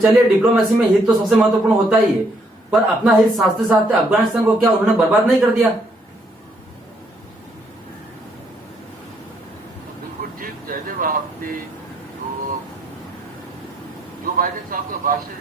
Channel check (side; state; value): both; normal; correlation 0.71